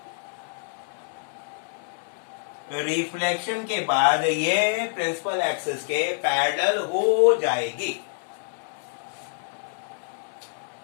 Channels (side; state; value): right; silent; 60 dB below the other